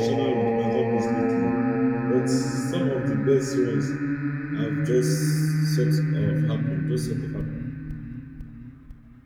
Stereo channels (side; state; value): both; identical; correlation 1.00